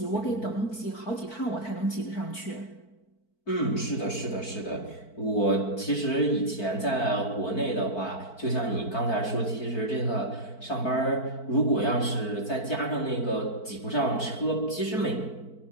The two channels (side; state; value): right; late; 4.5 ms